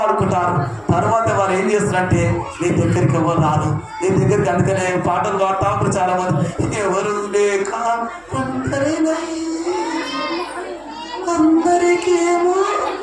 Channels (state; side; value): noise; right; hum, 29 dB below the sound